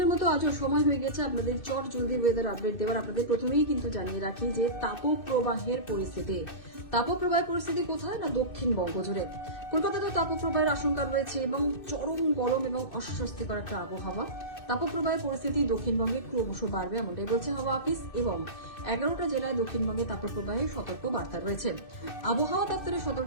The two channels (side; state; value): right; late; 2.6 ms